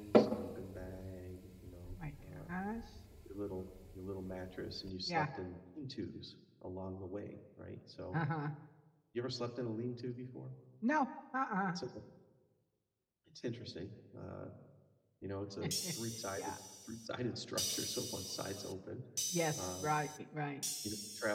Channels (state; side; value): identical; both; correlation 1.00